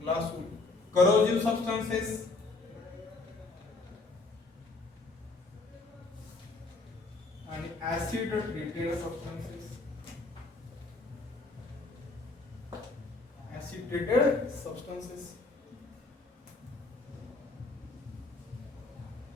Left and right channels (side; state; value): right; quieter; 3.4 dB